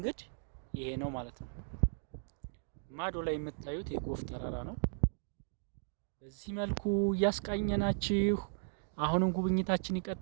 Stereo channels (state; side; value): silent; left; digital silence